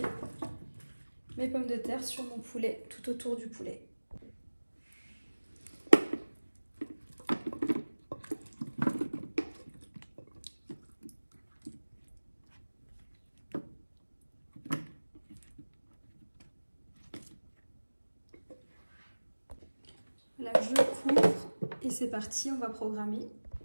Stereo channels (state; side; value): inverted; both; correlation -1.00